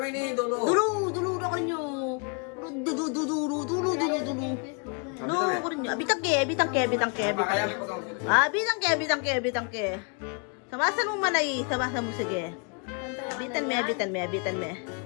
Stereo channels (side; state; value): right; quieter; 36.9 dB